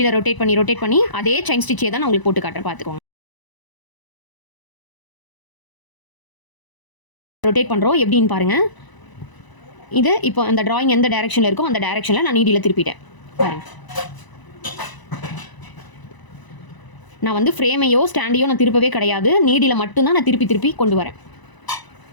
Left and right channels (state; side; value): late; right; 1.0 ms